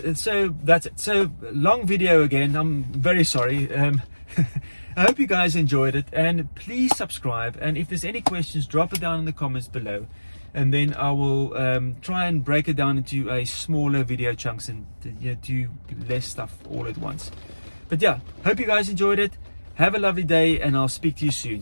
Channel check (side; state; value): both; inverted; correlation -1.00